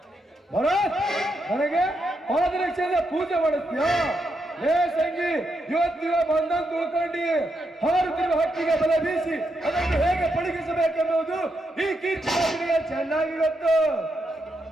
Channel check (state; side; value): normal; both; correlation 0.82